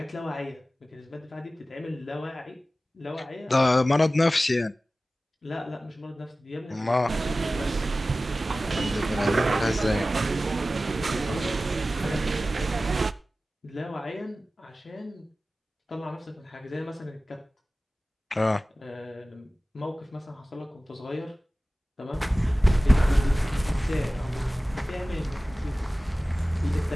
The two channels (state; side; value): normal; both; correlation 0.96